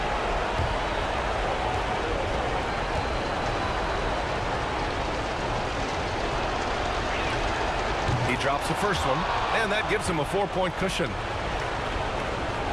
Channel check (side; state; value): both; identical; correlation 1.00